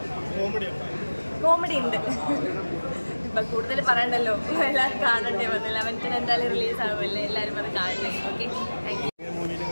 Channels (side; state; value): both; inverted; correlation -1.00